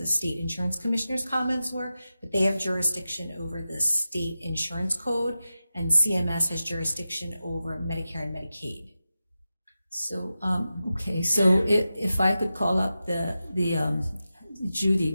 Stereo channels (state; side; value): inverted; both; correlation -0.93